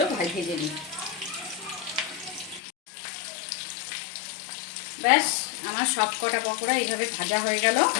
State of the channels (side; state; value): right; drops out; at 2.6 s